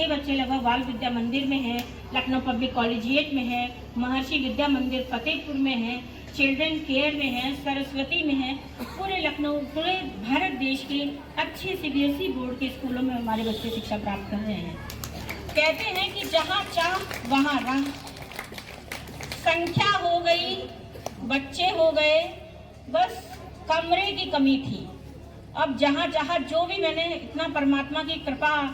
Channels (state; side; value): identical; both; correlation 1.00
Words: बच्चे लगभग बाल विद्या मंदिर में है, लखनऊ पब्लिक कॉलेजिएट में है, महर्षि विद्या मंदिर फतेहपुर में है, चिल्ड्रन केयर में है, सरस्वती में है। पूरे लखनऊ, पूरे भारत देश के अच्छे सीबीएसई बोर्ड के स्कूलों में हमारे बच्चे शिक्षा प्राप्त कर रहे हैं। कहते हैं कि जहाँ चाह वहाँ राह, संख्या हो गई, बच्चे हो गए, बस कमरे की कमी थी। अब जहाँ जहाँ जो भी, मैंने इतना परमात्मा की कृपा